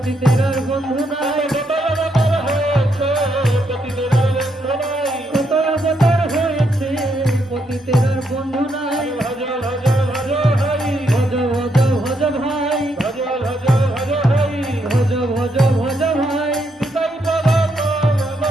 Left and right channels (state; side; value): normal; both; correlation 0.77